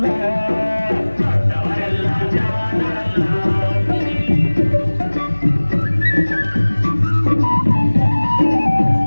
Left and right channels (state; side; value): inverted; both; correlation -1.00